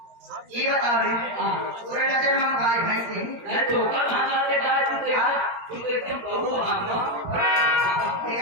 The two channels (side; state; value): left; late; 17 ms